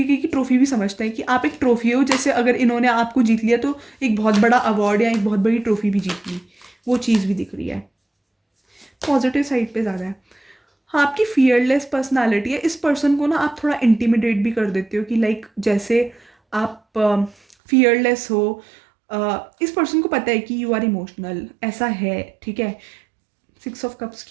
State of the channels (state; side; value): drops out; left; at 17.6 s